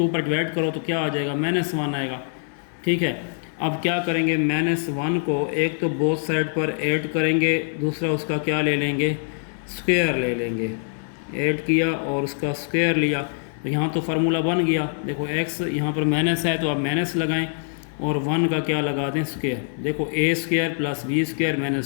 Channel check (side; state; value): right; silent; 63 dB below the other